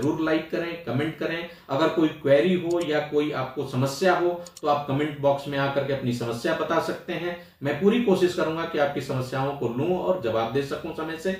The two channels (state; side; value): identical; both; correlation 1.00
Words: लाइक करें, कमेंट करें। अगर कोई क्वेरी हो या कोई आपको समस्या हो तो आप कमेंट बॉक्स में आकर के अपनी समस्या बता सकते हैं। मैं पूरी कोशिश करूंगा कि आपकी समस्याओं को लूं और जवाब दे सकूं समय से।